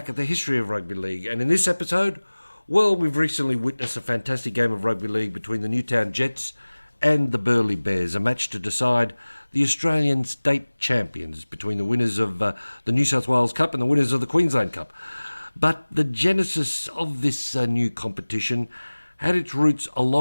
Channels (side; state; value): both; inverted; correlation -1.00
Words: at the history of rugby league. And in this episode, well, we've recently witnessed a fantastic game of rugby league between the Newtown Jets and the Burleigh Bears, a match to decide the Australian state champions between the winners of the New South Wales Cup and the winners of the Queensland Cup. But the genesis of this new competition had its roots a